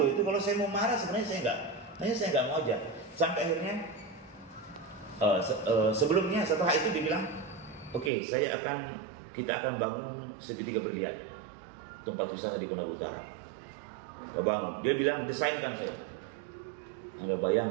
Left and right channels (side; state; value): left; drops out; at 8.1 s